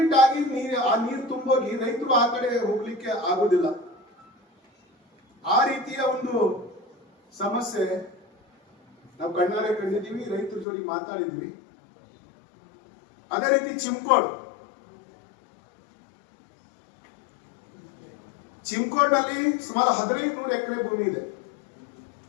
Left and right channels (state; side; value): drops out; right; at 10.7 s